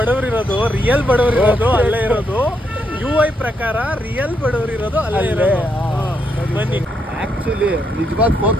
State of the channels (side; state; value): both; normal; correlation 0.78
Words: ಇರೋದು, ರಿಯಲ್ ಬಡವ್ರು ಇರೋದು ಅಲ್ಲೇ ಇರೋದು. UI ಪ್ರಕಾರ ರಿಯಲ್ ಬಡವ್ರು ಇರೋದು ಅಲ್ಲೇ ಇರೋದು. ಬನ್ನಿ. ಆಕ್ಚುಲಿ ನಿಜವಾದ